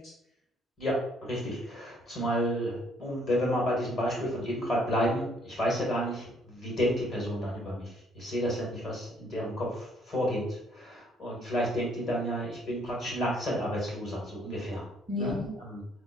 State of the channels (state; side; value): normal; both; correlation 0.66